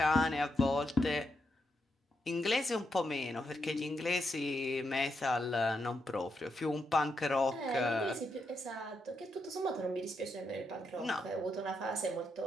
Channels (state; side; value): normal; both; correlation 0.82